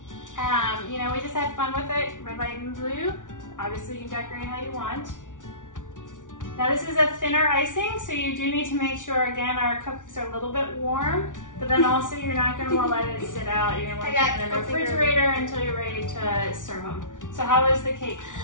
You know, we just had fun with it. Red, white, and blue. Obviously, you can decorate how you want. Now, this is a thinner icing, so you do need to make sure, again, our cupcakes are a little bit warm, but then also you're not going to want to let it sit out. You're going to want to keep it in the refrigerator until you're ready to serve them. So how is the cake?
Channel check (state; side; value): late; right; 0.87 ms